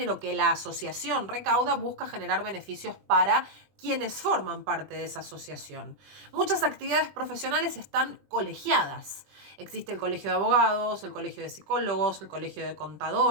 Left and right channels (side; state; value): left; late; 20 ms